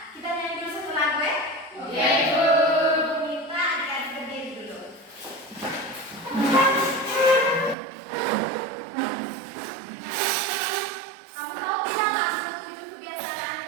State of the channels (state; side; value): drops out; left; at 7.8 s